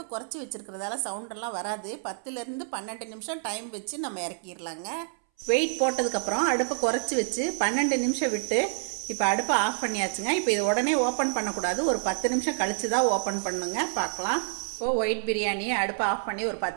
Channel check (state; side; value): silent; left; 59 dB below the other